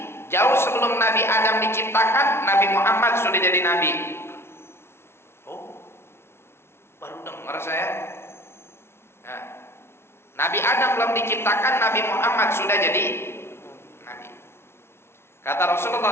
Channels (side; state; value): right; late; 0.12 ms